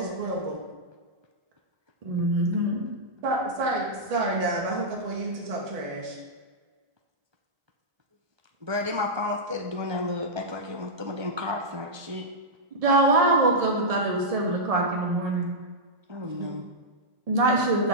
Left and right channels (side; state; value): left; late; 1.7 ms